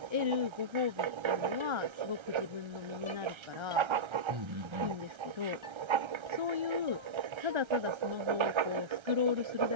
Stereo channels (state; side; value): late; left; 1.3 ms